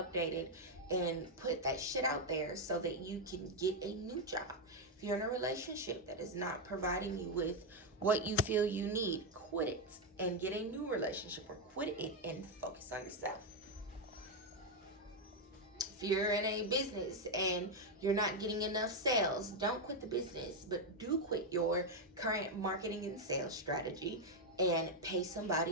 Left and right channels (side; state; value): both; normal; correlation 0.03